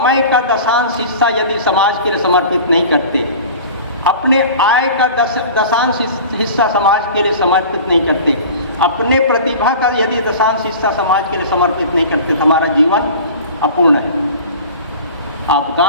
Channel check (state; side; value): inverted; both; correlation -0.40